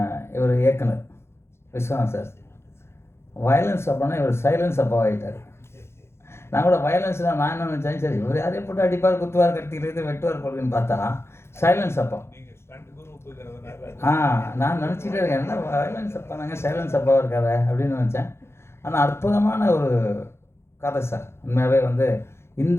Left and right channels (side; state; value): right; late; 0.12 ms